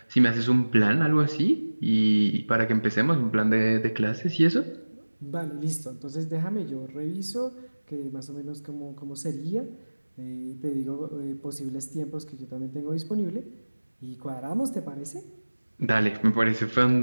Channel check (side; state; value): both; inverted; correlation -1.00